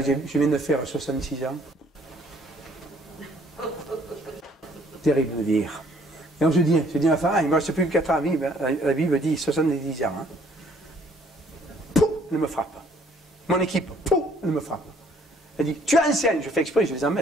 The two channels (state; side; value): normal; both; correlation 0.61